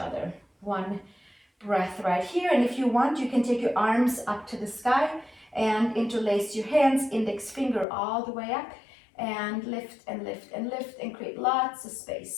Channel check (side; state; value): right; drops out; at 7.9 s